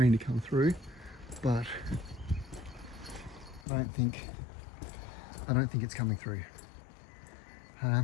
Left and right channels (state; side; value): drops out; right; at 3.7 s